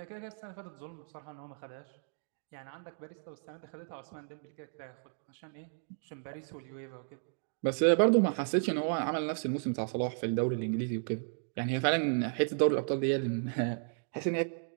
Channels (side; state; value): left; silent; digital silence